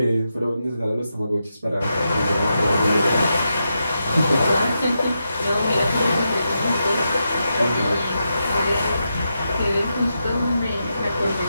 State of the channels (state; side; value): inverted; both; correlation -0.86